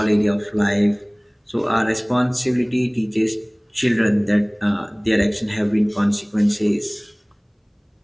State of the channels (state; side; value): identical; both; correlation 1.00